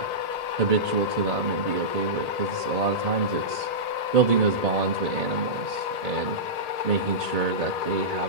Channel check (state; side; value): late; left; 1.8 ms